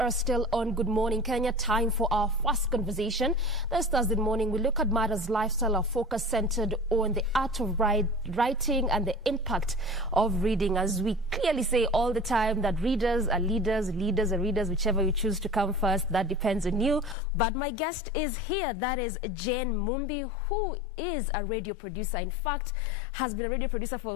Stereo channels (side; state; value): right; drops out; at 17.2 s